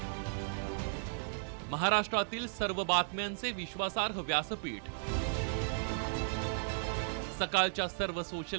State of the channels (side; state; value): left; silent; digital silence